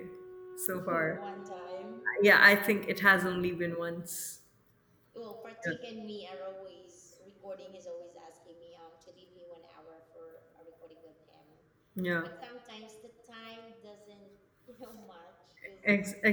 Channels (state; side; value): identical; both; correlation 1.00